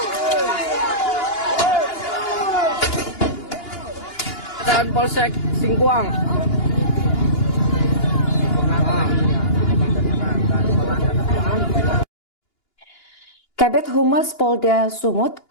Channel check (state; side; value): late; right; 2.9 ms